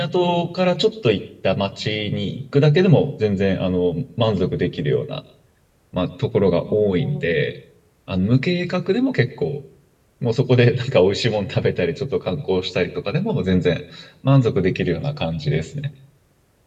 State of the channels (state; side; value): identical; both; correlation 1.00